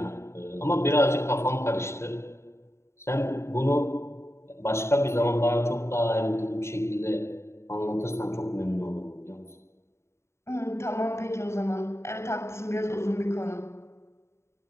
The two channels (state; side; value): late; right; 0.13 ms